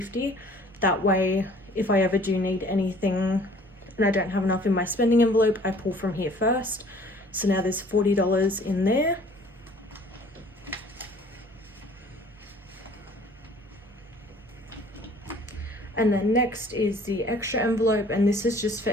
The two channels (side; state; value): both; normal; correlation 0.52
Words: That way, if I ever do need anything and I don't have enough in my spending envelope, I pull from here first. So now there's $40 in there. And then next is the extra envelope, and this is just for